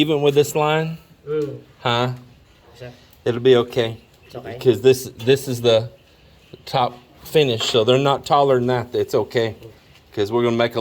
with this line? Huh? It'll be okay. It's okay. Because this is the top finish, so they're not taller than that. It's okay. Because we're going to make a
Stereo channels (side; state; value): both; identical; correlation 1.00